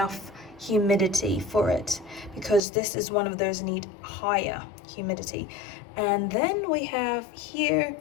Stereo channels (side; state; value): right; drops out; at 2.6 s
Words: humidity for it, because this is one of those need higher humidity. And then we have here